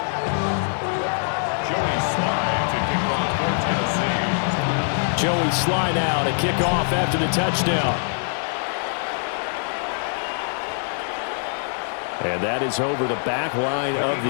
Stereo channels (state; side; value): silent; right; digital silence